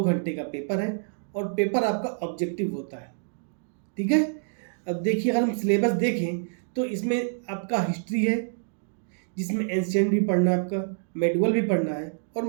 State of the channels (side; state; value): left; silent; digital silence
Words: घंटे का पेपर है और पेपर आपका ऑब्जेक्टिव होता है। ठीक है। अब देखिए अगर हम सिलेबस देखें तो इसमें आपका हिस्ट्री है, जिसमें एंशिएंट भी पढ़ना है, आपका मेडुअल भी पढ़ना है और